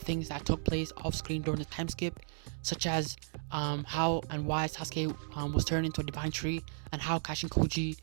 that took place off-screen during the time skip, such as how and why Sasuke was turned into a divine tree, and how Kashin Koji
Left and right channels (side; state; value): left; silent; digital silence